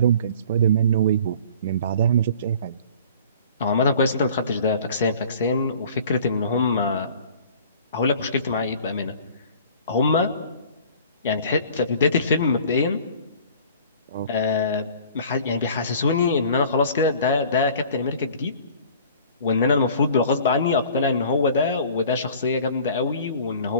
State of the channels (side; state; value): both; inverted; correlation -0.48